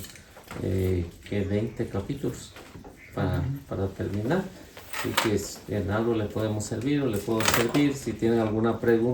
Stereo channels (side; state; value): both; identical; correlation 1.00